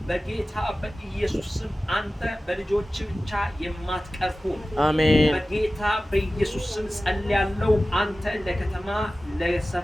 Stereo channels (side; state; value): both; normal; correlation 0.96